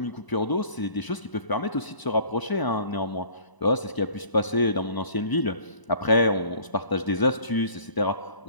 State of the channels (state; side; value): late; right; 1.0 ms